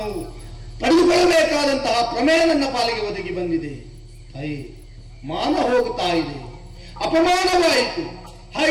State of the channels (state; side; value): identical; both; correlation 1.00